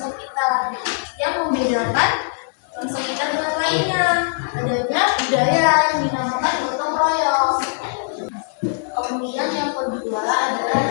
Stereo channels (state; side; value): silent; right; 65 dB below the other